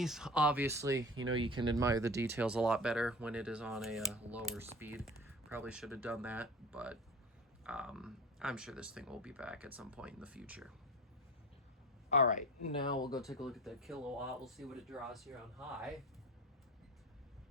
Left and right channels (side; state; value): both; normal; correlation 0.35